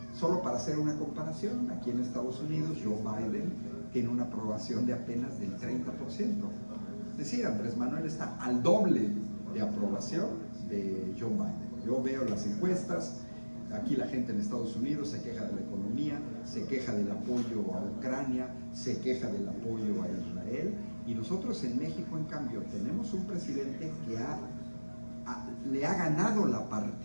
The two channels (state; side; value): inverted; both; correlation -1.00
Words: Solo para hacer una comparación, aquí en Estados Unidos Joe Biden tiene una aprobación de apenas del 30%. Es decir, Andrés Manuel está al doble de aprobación de Joe Biden. Yo veo las encuestas, aquí la gente en Estados Unidos se queja de la economía, se queja del apoyo a Ucrania, se queja del apoyo a Israel, y nosotros en México, en cambio, tenemos un presidente que le ha ganado la